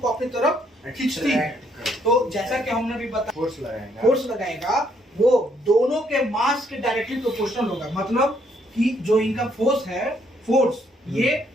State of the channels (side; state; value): both; normal; correlation 0.70